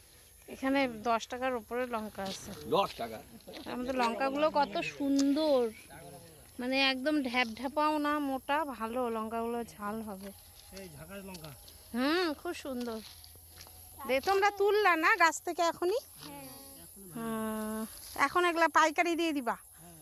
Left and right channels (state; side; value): identical; both; correlation 1.00